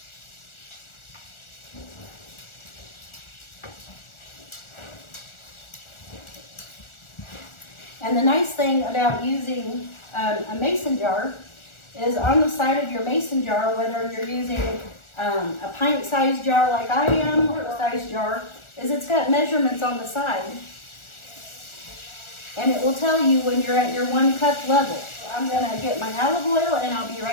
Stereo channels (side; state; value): right; late; 1.4 ms